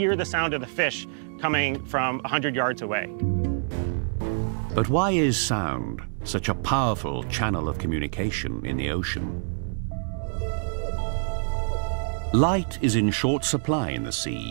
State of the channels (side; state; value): left; silent; digital silence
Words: the sound of the fish coming from 100 yards away. But why is sound such a powerful channel of communication in the ocean? Light is in short supply in the